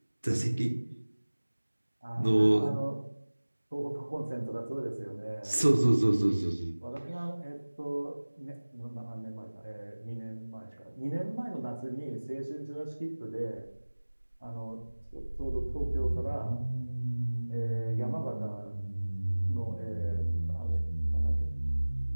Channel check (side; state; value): both; inverted; correlation -1.00